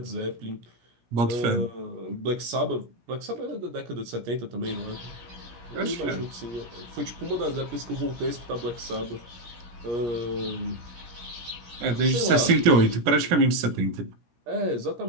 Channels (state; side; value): late; left; 17 ms